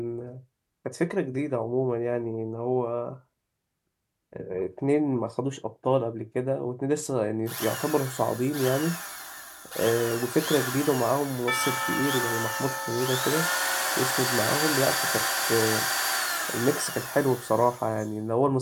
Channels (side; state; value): both; identical; correlation 1.00